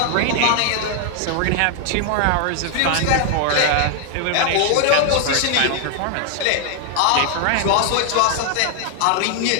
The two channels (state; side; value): different; both; correlation 0.00